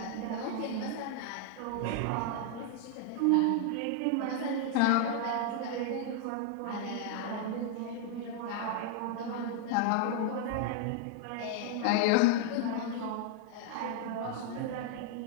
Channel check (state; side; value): different; both; correlation 0.00